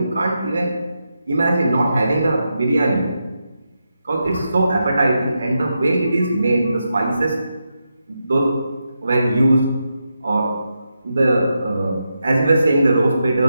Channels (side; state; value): both; inverted; correlation -0.86